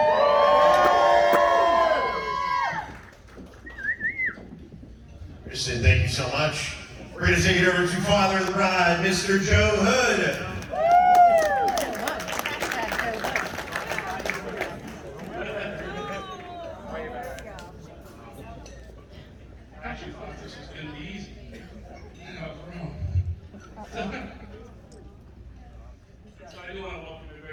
Kristen, thank you so much. We're going to take it over to Father of the Bride, Mr. Joe Hood. I actually thought this was going to be easy. I was wrong. So I do want to welcome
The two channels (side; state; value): both; identical; correlation 1.00